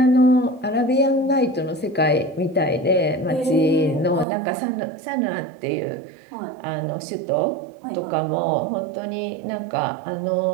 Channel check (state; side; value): drops out; left; at 4.2 s